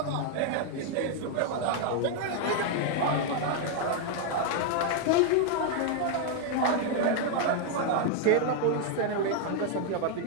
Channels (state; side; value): different; both; correlation 0.00